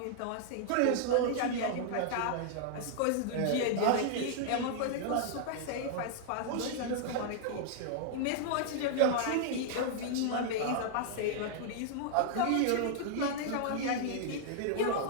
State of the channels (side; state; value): both; different; correlation -0.01